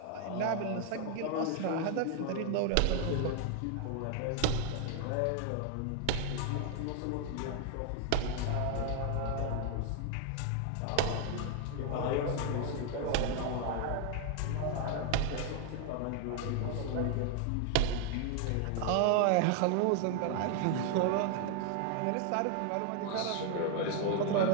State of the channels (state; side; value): different; both; correlation 0.00